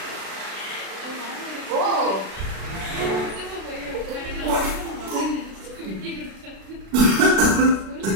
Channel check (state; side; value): late; left; 36 ms